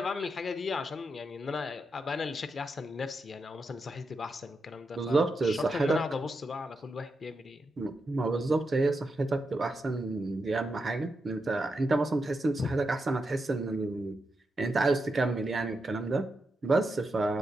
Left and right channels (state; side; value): normal; both; correlation 0.86